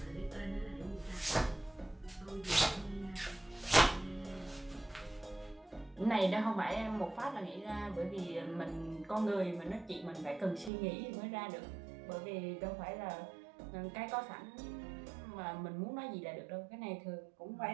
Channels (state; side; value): drops out; left; at 10.7 s